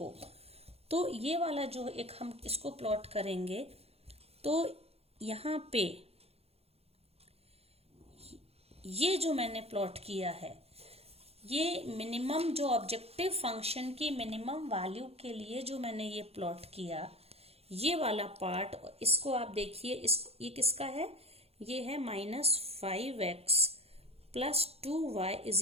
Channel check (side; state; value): left; late; 0.29 ms